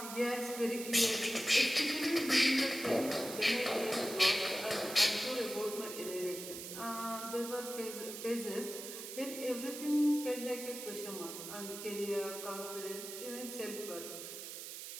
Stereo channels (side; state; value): right; noise; hiss, 9 dB below the sound